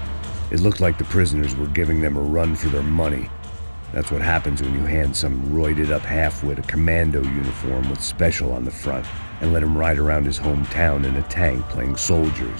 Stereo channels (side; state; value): both; inverted; correlation -1.00